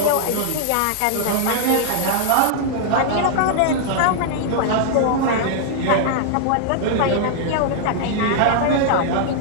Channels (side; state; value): both; different; correlation -0.01